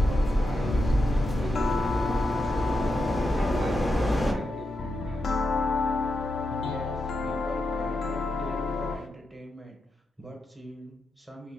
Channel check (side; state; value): both; normal; correlation 0.87